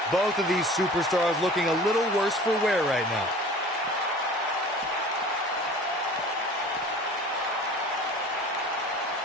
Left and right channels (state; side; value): normal; both; correlation 0.43